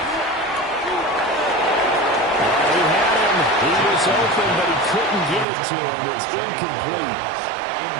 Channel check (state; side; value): drops out; left; at 5.5 s